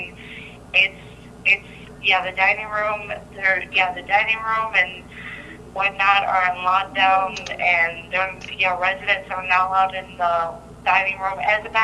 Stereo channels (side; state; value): both; identical; correlation 1.00